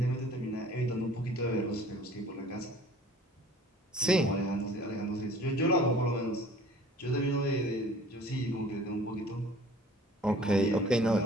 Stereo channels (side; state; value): both; normal; correlation 0.49